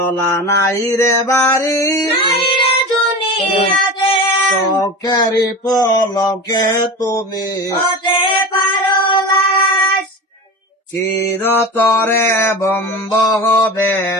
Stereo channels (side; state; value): both; normal; correlation 0.30